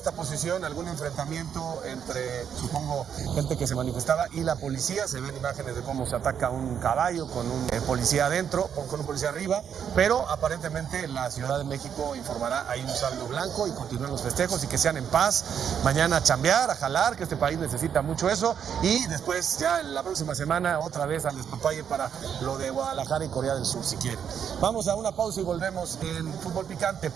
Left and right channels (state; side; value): quieter; left; 8.1 dB